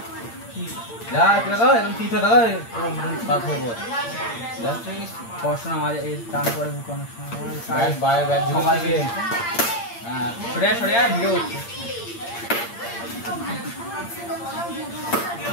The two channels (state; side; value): late; right; 8.7 ms